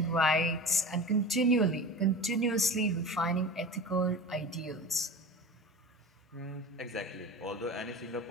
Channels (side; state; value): both; normal; correlation 0.33